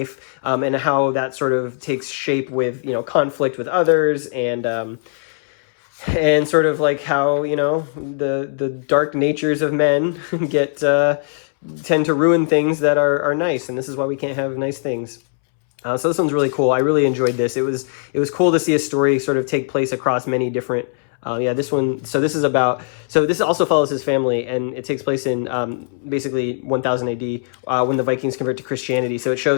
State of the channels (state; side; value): silent; right; 66 dB below the other